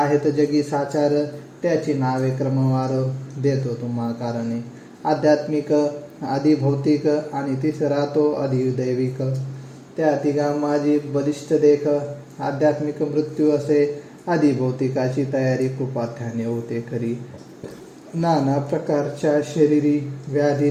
जगी साचार. त्याची नावे क्रमवार देतो तुम्हा कारणे. आध्यात्मिक अधिभौतिक आणि तिसरा तो अधिदैविक. त्या तिघा माझी बलिष्ठ देख. आध्यात्मिक मृत्यू असे अधिभौतिकाची तयारी कृपाथ्याने होते खरी. नाना प्रकारच्या शरीरी व्याधी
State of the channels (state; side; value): identical; both; correlation 1.00